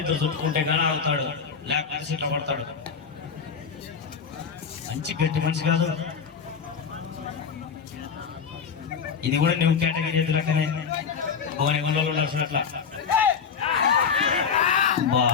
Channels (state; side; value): quieter; right; 6.4 dB